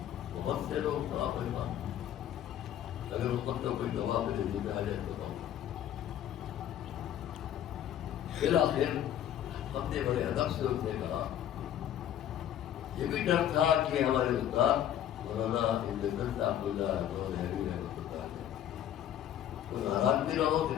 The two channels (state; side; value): quieter; right; 10.8 dB